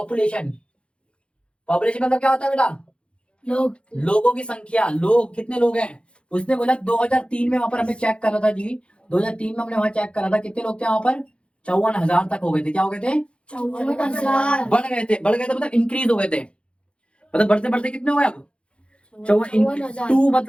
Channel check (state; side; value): late; right; 0.058 ms